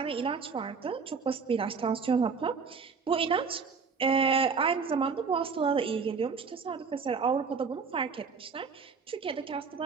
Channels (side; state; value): left; quieter; 5.3 dB